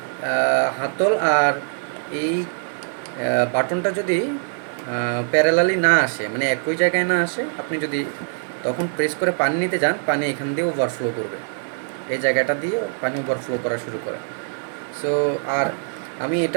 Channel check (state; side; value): silent; left; digital silence